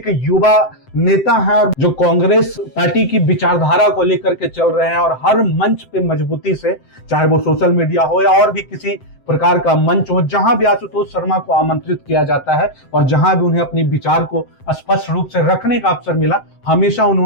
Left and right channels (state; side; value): late; right; 7.7 ms